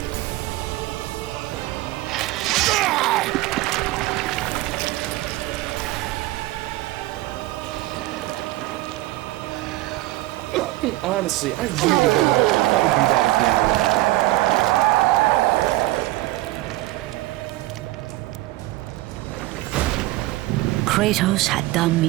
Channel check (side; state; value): left; quieter; 18.1 dB